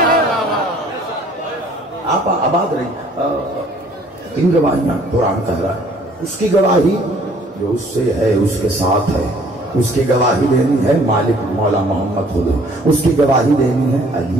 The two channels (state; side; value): normal; both; correlation 0.57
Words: آپ آباد رہی، ان گواہیاں قرآن کہہ رہا ہے، اس کی گواہی جو اس سے ہے اس کے ساتھ ہے، اس کی گواہی دینی ہے مالک مولا محمد خود، اس کی گواہی دینی ہے